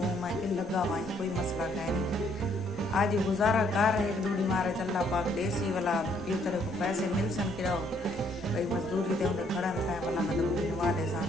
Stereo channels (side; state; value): both; normal; correlation 0.67